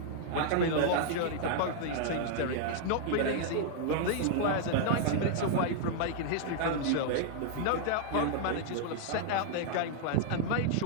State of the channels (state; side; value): different; both; correlation -0.01